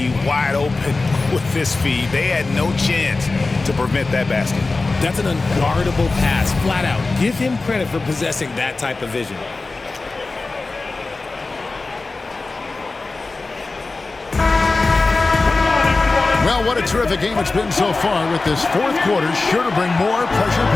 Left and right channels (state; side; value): quieter; right; 3.6 dB